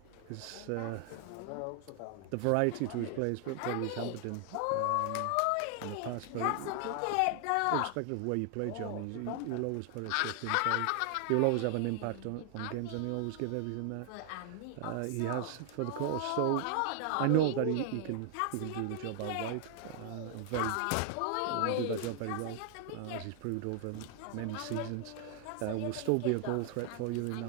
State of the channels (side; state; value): both; different; correlation 0.00